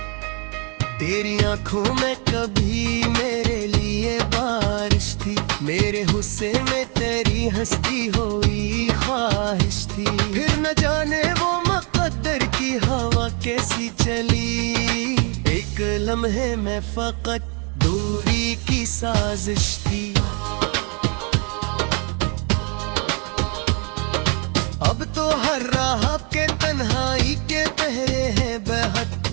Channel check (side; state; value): left; quieter; 34.7 dB